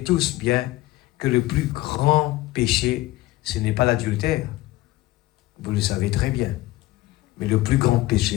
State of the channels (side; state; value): right; quieter; 17.8 dB